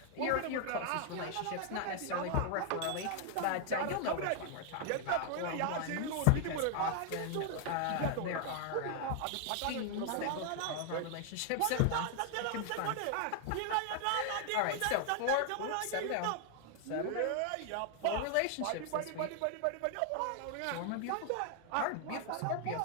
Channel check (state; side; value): different; both; correlation 0.00